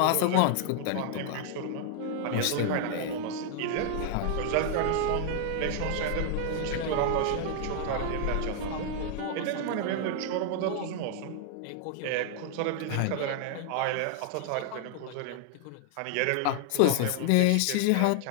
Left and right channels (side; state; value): both; different; correlation 0.00